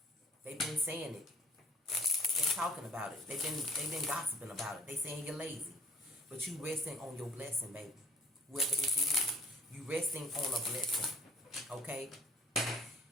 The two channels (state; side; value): normal; both; correlation 0.54